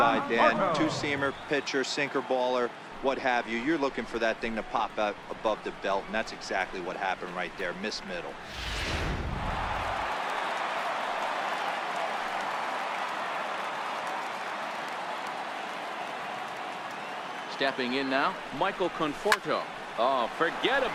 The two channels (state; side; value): identical; both; correlation 1.00